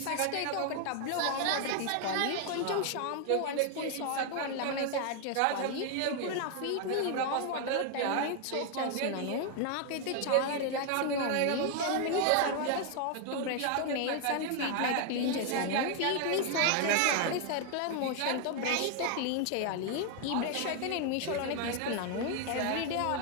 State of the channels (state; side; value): different; both; correlation 0.00